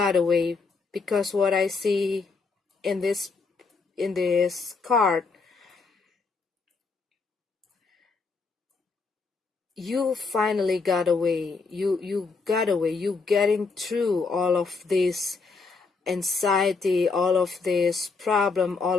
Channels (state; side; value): quieter; right; 4.4 dB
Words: away. Because what I see in this card, you finally got away. You got away. You getting through all of this anxiety, all of this problem,